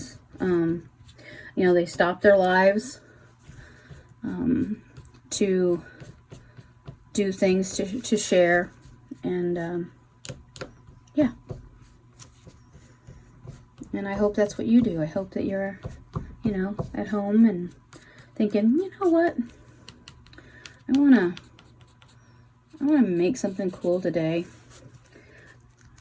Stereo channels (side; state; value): both; identical; correlation 1.00